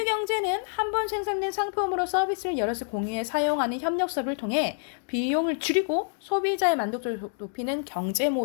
경제는 한 번 생산된 상품으로 서비스를 여럿이 공유해 사용하는 협력 사업을 통해 비용을 줄이고 소비자의 만족도를 높이는 경제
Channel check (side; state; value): right; silent; digital silence